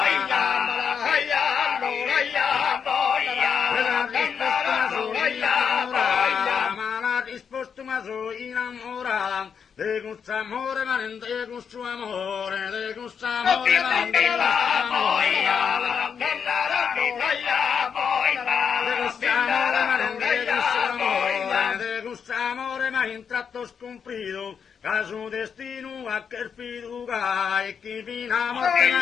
Ma la risposta sono innamorata. De questo amore, ma non de questo amore, de questo amore, ma non de questo amore. De questo amore, ma non de questo amore, de questo amore, ma in tratto scomprito. Caso destino a che fiducia e chi fino a morte ma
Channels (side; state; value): right; quieter; 6.9 dB